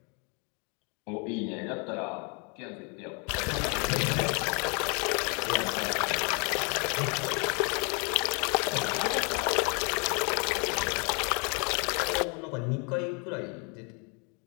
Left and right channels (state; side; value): quieter; right; 34.5 dB